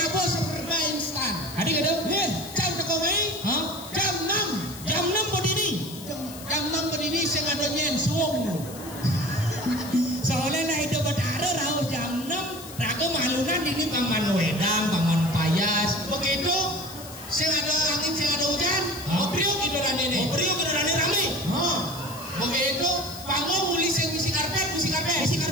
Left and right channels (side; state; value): left; noise; hiss, 15 dB below the sound